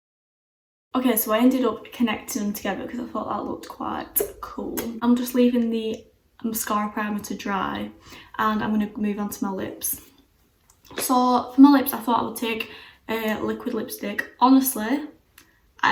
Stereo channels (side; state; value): both; identical; correlation 1.00